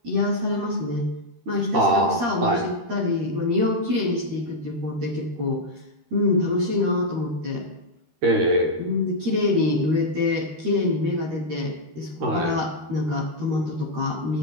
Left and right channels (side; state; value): left; late; 13 ms